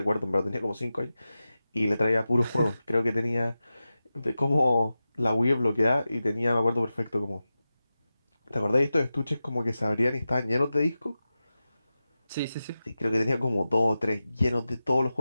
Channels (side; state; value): both; inverted; correlation -0.93